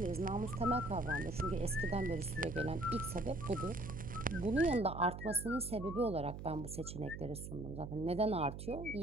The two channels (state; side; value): noise; right; hum, 9 dB below the sound